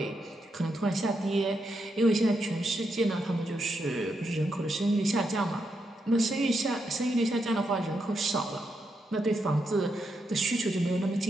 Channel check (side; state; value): both; normal; correlation 0.82